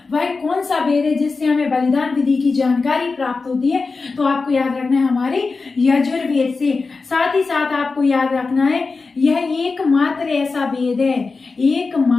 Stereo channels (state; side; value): quieter; right; 4.2 dB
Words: वह कौन सा वेद है जिससे हमें बलिदान विधि की जानकारी प्राप्त होती है तो आपको याद रखना है हमारे यजुर्वेद से। साथ ही साथ आपको याद रखना है यह एकमात्र ऐसा वेद